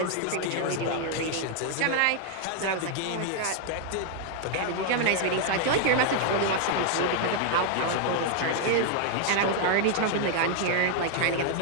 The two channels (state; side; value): different; both; correlation 0.00